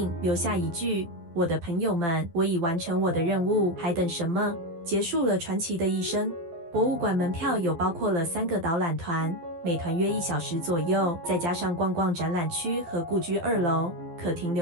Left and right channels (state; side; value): late; left; 12 ms